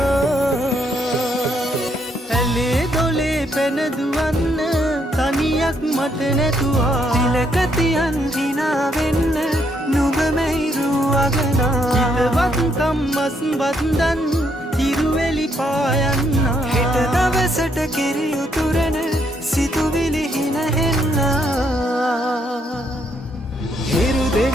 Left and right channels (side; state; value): both; normal; correlation 0.73